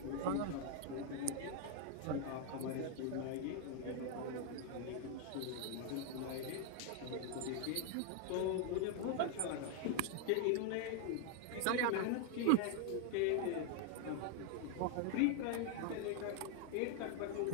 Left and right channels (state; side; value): different; both; correlation 0.01